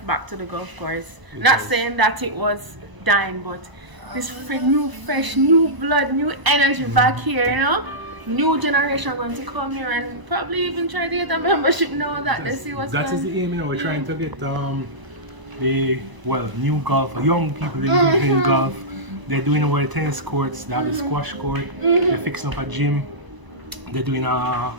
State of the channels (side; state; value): left; late; 1.0 ms